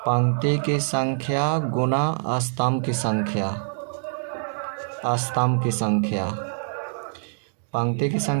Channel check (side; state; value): left; silent; digital silence